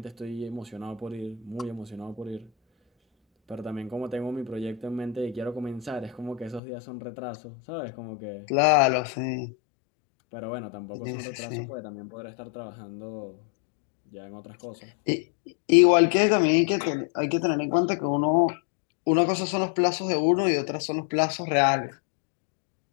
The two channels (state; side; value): drops out; right; at 6.6 s